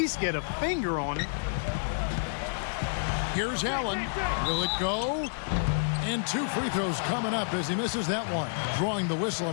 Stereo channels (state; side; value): silent; right; 55 dB below the other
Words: get a finger on it. Here's Allen. Will it go? And 2 free throws coming up as he misses that one. Drawing the whistle